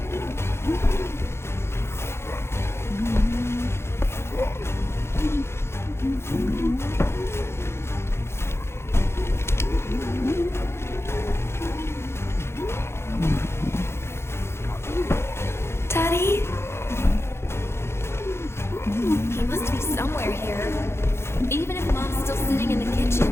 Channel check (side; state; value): right; late; 0.12 ms